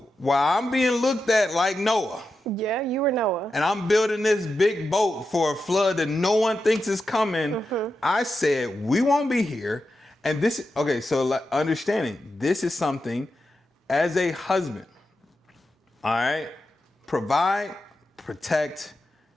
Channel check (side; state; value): both; normal; correlation 0.89